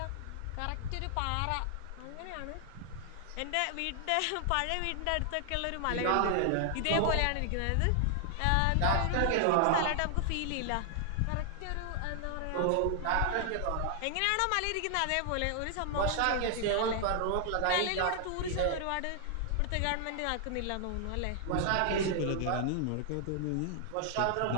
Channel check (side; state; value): both; different; correlation 0.00